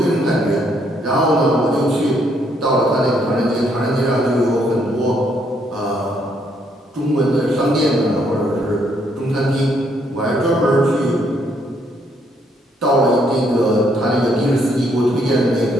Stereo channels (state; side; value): normal; both; correlation 0.71